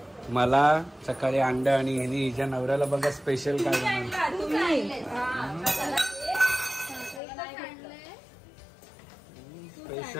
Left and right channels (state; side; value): drops out; right; at 7.2 s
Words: मला सकाळी अंड आणि हिच्या नवऱ्याला बघा स्पेशल काय